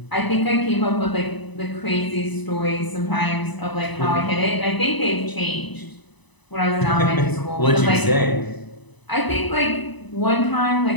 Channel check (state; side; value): late; right; 1.0 ms